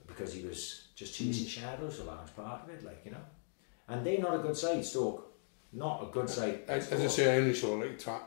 Because he was just chasing shadows, a large part of it, like, you know. And they're not a good side, Stoke. Not a good side. As I say, I only saw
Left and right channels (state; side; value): silent; right; digital silence